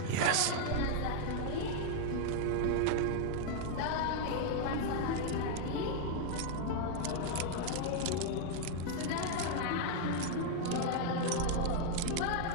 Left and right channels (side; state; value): both; different; correlation 0.00